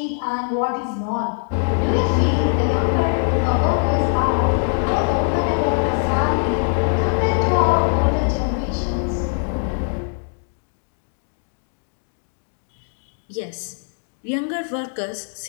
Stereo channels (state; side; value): silent; right; 60 dB below the other